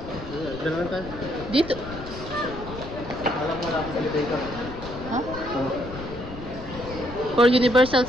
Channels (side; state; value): left; noise; rumble, 12 dB below the sound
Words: Dito. Huh? For Universal